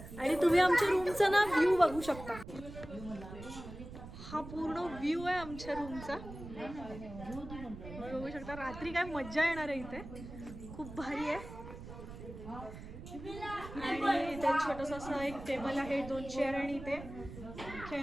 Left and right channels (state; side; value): noise; right; rumble, 12 dB below the sound